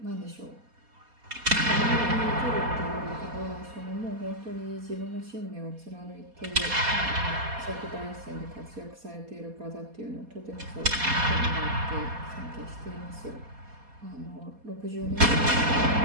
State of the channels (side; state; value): left; late; 4.2 ms